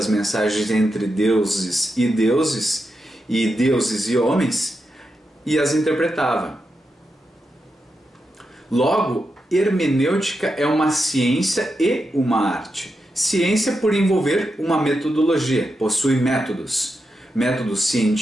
mensagens entre deuses e deuses e homens, e as interpretava. Logo, hermenêutica é uma ciência e uma arte. Ciência por envolver uma metodologia, possui métodos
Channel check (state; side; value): normal; both; correlation 0.87